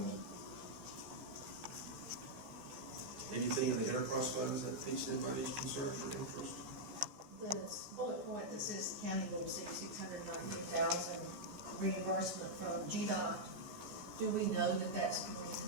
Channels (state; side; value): late; left; 14 ms